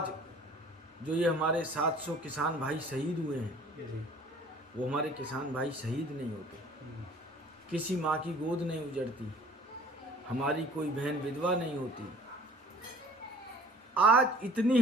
जो ये हमारे 700 किसान भाई शहीद हुए हैं, वो हमारे किसान भाई शहीद नहीं होते, किसी माँ की गोद नहीं उजड़ती, हमारी कोई बहन विधवा नहीं होती। आज इतनी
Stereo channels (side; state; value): both; normal; correlation 0.50